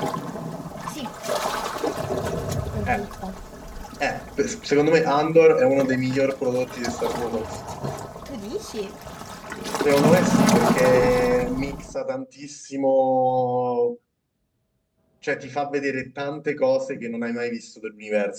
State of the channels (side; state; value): both; identical; correlation 1.00